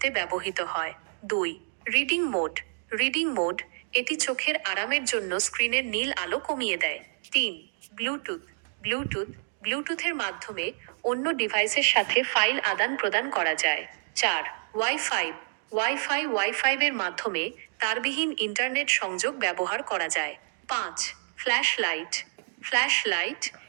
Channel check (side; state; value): left; silent; digital silence